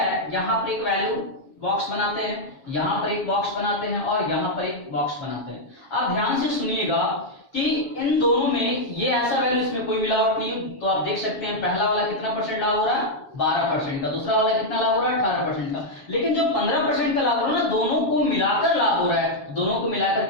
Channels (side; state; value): right; late; 7.3 ms